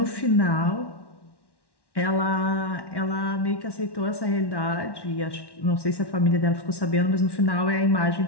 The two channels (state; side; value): late; right; 1.1 ms